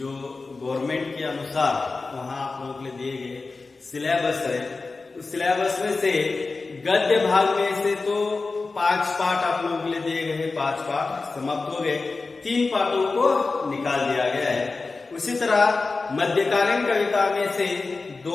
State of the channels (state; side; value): quieter; right; 3.9 dB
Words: गवर्नमेंट के अनुसार वहाँ आप लोगों के लिए दिए गए सिलेबस है, उस सिलेबस में से गद्य भाग में से तो 5 पाठ आप लोगों के लिए दिए गए हैं। 5 पाठ समाप्त हो गए, 3 पाठों को निकाल दिया गया है। उसी तरह मध्यकालीन कविता में से